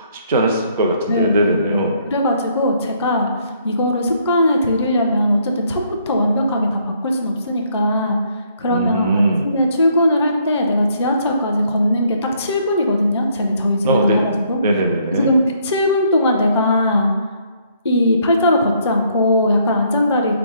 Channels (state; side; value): inverted; both; correlation -0.68